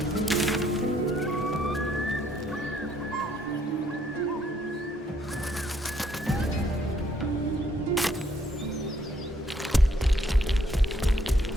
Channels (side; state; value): both; normal; correlation 0.69